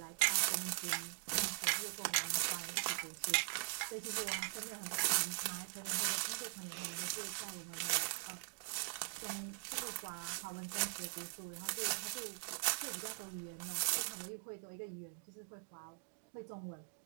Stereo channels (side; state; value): left; silent; digital silence